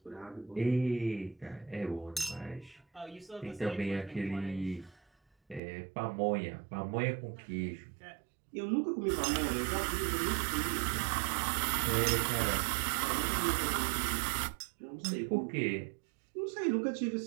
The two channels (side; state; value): left; drops out; at 5.6 s